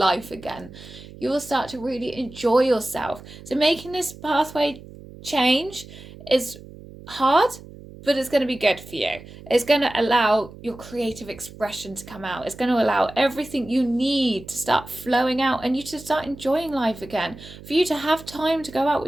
again. You will start to really enjoy yourself. So making this pathway change is hard, but it's going to be good for you. It's going to allow your creative expression to come out. It's going to allow everything you need to start flowing out and you to start enjoying life again, for you to have time to go out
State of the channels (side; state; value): right; noise; hum, 17 dB below the sound